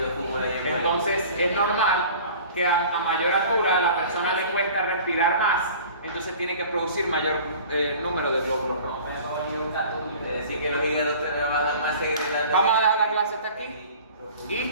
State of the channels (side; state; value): both; inverted; correlation -0.44